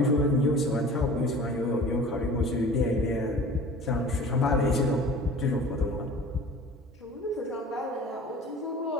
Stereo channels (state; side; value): normal; both; correlation 0.42